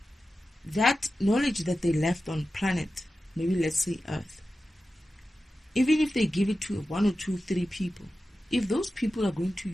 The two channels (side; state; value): both; normal; correlation 0.93